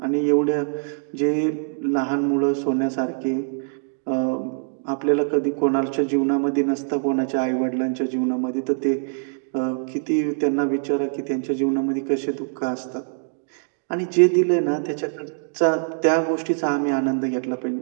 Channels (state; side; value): silent; left; digital silence